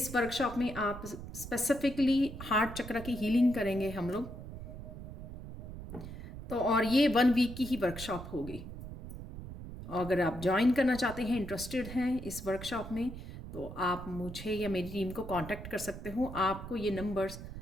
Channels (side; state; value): right; noise; rumble, 11 dB below the sound